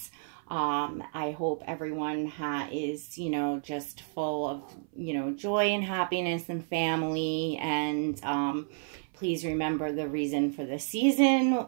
I hope everyone is, you know, just full of, you know, joy and happiness and family. And please remember the reason for the season,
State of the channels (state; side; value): silent; left; 57 dB below the other